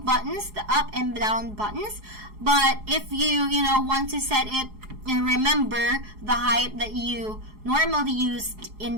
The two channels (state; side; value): late; left; 4.8 ms